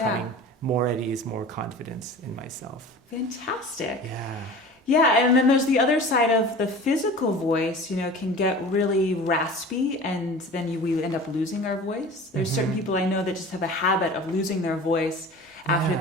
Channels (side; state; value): both; normal; correlation 0.39